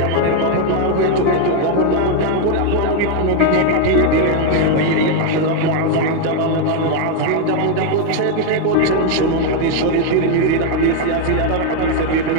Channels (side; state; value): both; different; correlation 0.00